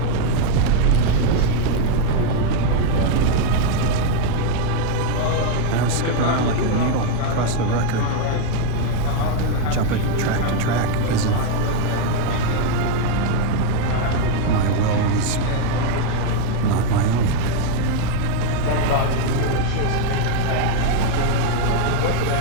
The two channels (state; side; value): different; both; correlation 0.01